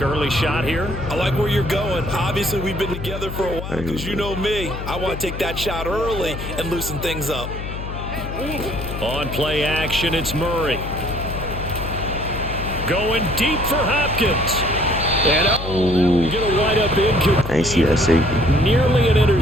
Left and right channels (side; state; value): left; noise; hum, 8 dB below the sound